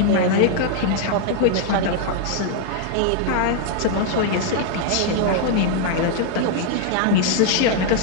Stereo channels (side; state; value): both; different; correlation 0.00